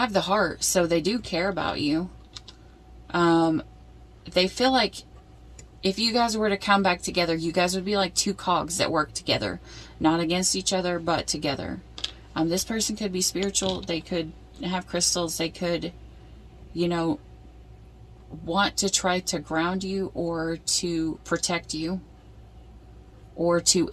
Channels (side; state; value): both; identical; correlation 1.00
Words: the heart, so they do care about you. They feel like if you guys were to come back together, you guys would be like two cogs that work together. Not against each other, but together. This person could be spiritual. They could have crystals. They could, you know, want to try to ground you or to protect you or to